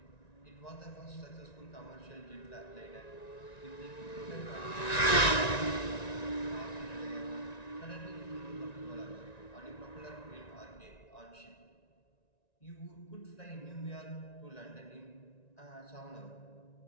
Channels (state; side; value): late; right; 1.9 ms